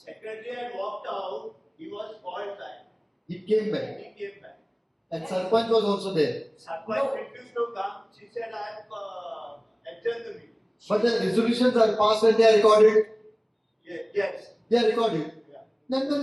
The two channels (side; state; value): both; identical; correlation 1.00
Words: had walked out, he was called back. He came back. He came back. And Sarpanch was also there. Sarpanch refused to come. She said, I have adjourned the meeting. But the resolutions are passed and they are recorded. Yes. They are recorded. Yeah. Then the